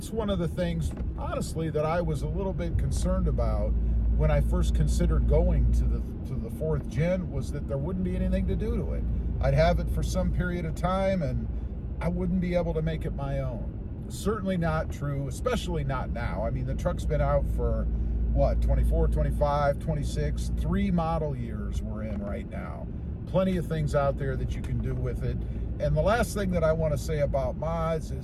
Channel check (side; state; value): both; identical; correlation 1.00